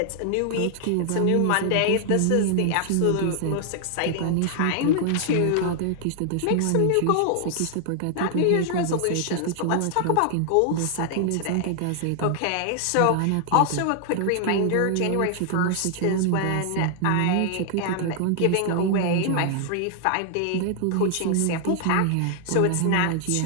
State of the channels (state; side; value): different; both; correlation 0.00